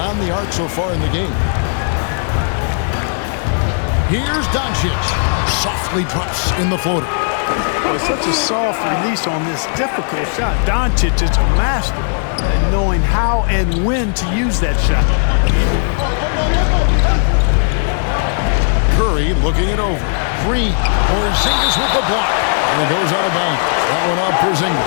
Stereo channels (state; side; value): silent; right; 65 dB below the other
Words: the arc so far in the game. Here's Doncic. Softly drops in the floater. Boy, such a soft release on this difficult shot. Doncic is a master at knowing how and when to use that shot. Curry looking it over. Green. Porzingis with the block. And it goes out of bounds. That one off